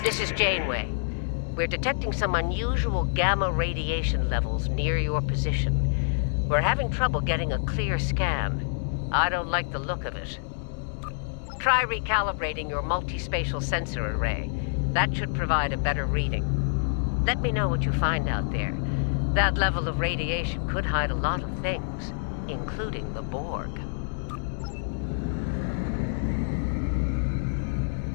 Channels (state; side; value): silent; right; digital silence